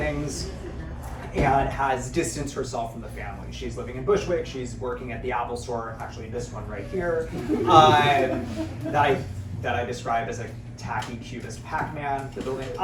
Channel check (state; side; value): identical; both; correlation 1.00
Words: and has distanced herself from the family. She's living in Bushwick, she's working at the Apple store, actually this one right here, that I describe as a tacky cubist Pac-Man, the building.